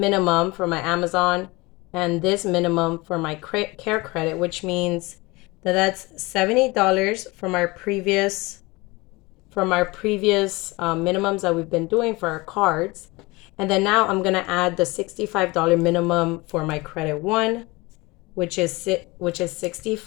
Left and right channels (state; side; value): quieter; right; 23.5 dB